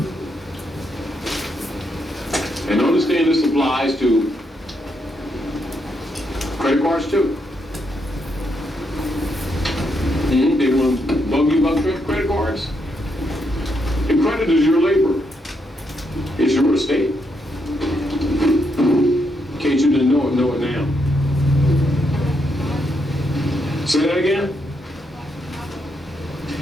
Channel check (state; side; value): normal; both; correlation 0.79